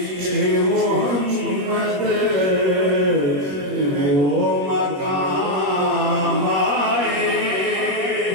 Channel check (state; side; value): late; left; 21 ms